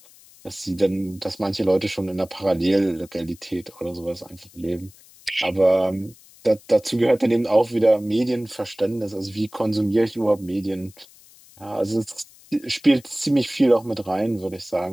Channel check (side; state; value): left; noise; hiss, 25 dB below the sound